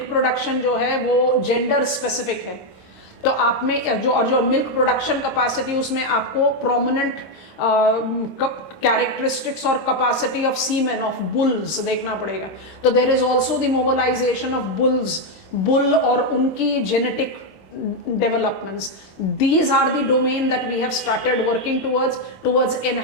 प्रोडक्शन जो है वो जेंडर स्पेसिफिक है, तो आप में जो मिल्क प्रोडक्शन कैपेसिटी उसमें आपको प्रोमिनेंट कैरेक्टरिस्टिक्स और capacity of semen of bulls देखना पड़ेगा। तो there is also the mobilisation of bull और उनकी genetic developments. These are the domain that we have started working towards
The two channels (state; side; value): late; right; 26 ms